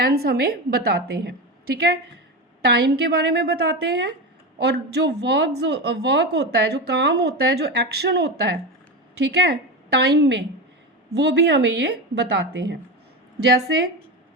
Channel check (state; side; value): normal; both; correlation 0.20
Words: हमें बताते हैं, ठीक है। टाइम के बारे में बताते हैं और जो वर्क होता है, जो काम होता है, जो एक्शन होता है, ठीक है, टाइम में, वो भी हमें ये बताते हैं। जैसे